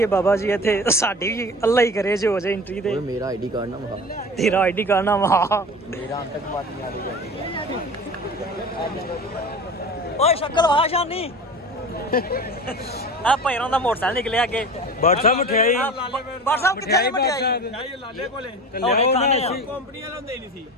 ਏ ਬਾਬਾ ਜੀ ਇੱਥੇ ਸਾਡੀ ਵੀ ਅੱਲਾ ਹੀ ਕਰੇ ਜੋ ਹੋ ਜਾਏ ਐਂਟਰੀ ਤੇ मेरा आईडी कार्ड ना वहा ਤੇਰਾ ਆਈਡੀ ਕਾਰਡ ਨਾ ਵਾ मेरा आतंकवादी आ रही ਓਏ ਸ਼ਕਲ ਵਾ ਸ਼ਾਨੀ ਆ ਪੈਰਾਂ ਦਾ ਮੋਟਰਸਾਈਕਲ ਨਿਕਲਿਆ ਅੱਗੇ WhatsApp ਮਠਿਆਈ WhatsApp ਕਿੱਥੇ ਹੈ ਮਠਿਆਈ ਲਾਲੇ ਕੋਲੇ ਕੰਪਨੀ ਵਾਲਾ ਹੁੰਦੇ ਨਹੀਂ ਸੀ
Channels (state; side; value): normal; both; correlation 0.35